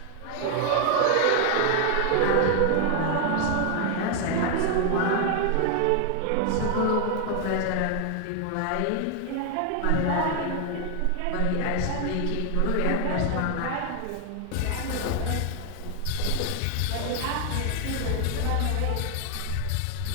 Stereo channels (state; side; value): different; both; correlation 0.00